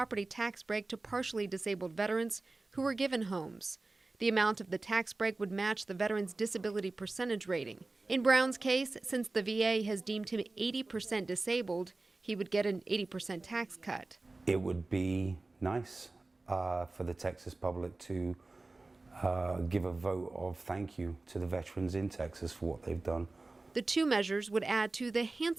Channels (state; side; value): quieter; left; 3.3 dB